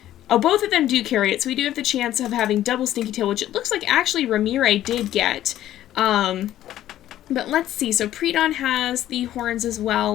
Oh, both of them do carry it, so we do have the chance of having double stinky tail, which it looks like actually Ramire did get. But let's see, so Pre-Dawn has the horns as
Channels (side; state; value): right; quieter; 12.9 dB